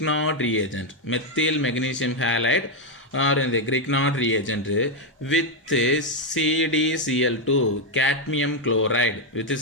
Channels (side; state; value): both; normal; correlation 0.03